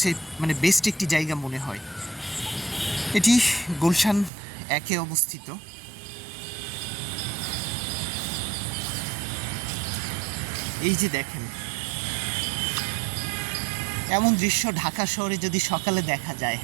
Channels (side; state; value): left; drops out; at 4.3 s